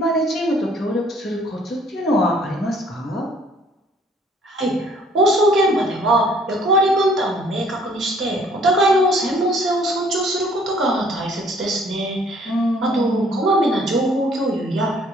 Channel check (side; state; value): both; normal; correlation 0.59